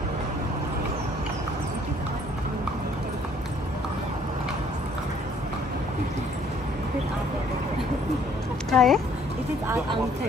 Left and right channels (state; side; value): normal; both; correlation 0.61